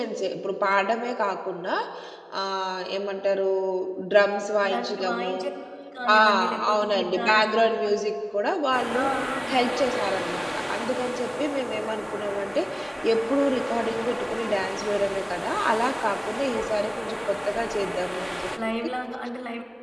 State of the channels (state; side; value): identical; both; correlation 1.00